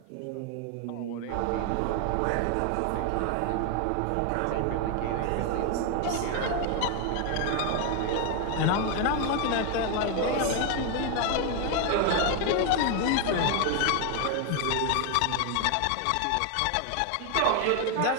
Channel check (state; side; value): different; both; correlation 0.01